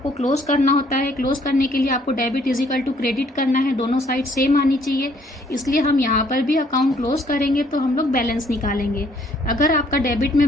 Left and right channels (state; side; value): normal; both; correlation 0.64